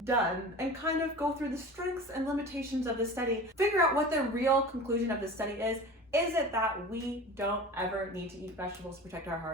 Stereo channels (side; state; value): both; normal; correlation 0.36